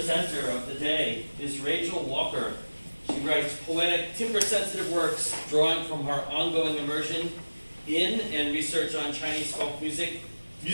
of the day is Rachel Walker. She writes poetic, timbre-sensitive works drawing from her ongoing immersion in and research on Chinese folk music,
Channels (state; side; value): inverted; both; correlation -1.00